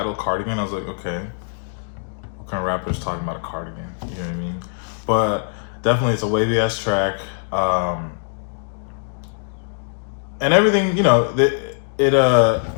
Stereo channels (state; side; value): silent; right; digital silence